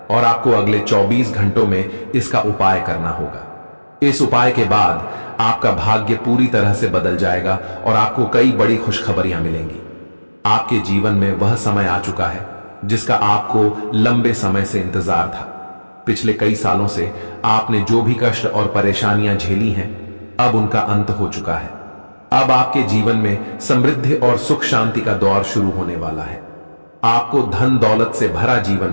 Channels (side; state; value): both; inverted; correlation -1.00